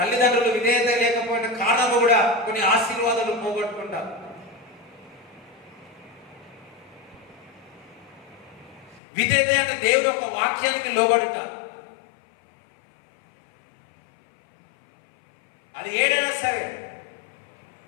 విధేయత లేకపోయిన కారణము కూడా కొన్ని ఆశీర్వాదాలు పోగొట్టుకుంటారు. విధేయత అంటే దేవుడు యొక్క వాక్యానికి లోబడుట. అది ఏదైనా సరే,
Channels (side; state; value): right; drops out; at 9.0 s